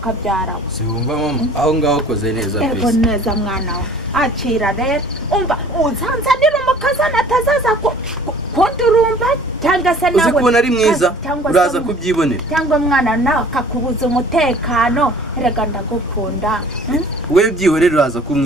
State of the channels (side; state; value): both; normal; correlation 0.50